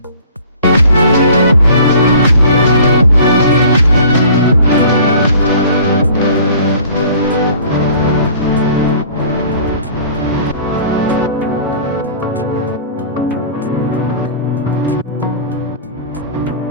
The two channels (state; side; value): inverted; both; correlation -0.48